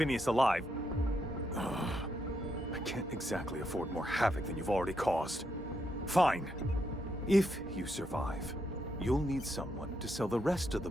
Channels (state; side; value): normal; both; correlation 0.79